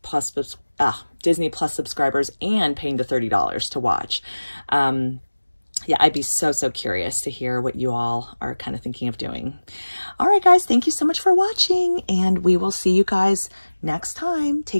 Plus subscribers and paying the $30 to watch. Yeah, I'd be so curious to hear what you all are kind of thinking of doing. All right, guys, thank you so much for watching, and we will see you guys next time.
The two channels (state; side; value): inverted; both; correlation -1.00